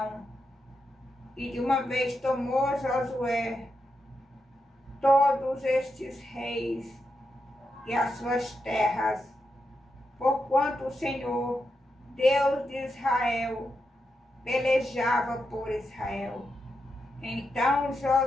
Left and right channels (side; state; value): both; normal; correlation 0.85